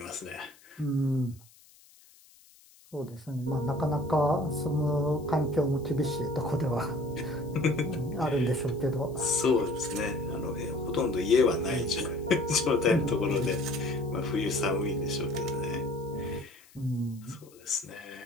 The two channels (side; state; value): left; noise; hiss, 26 dB below the sound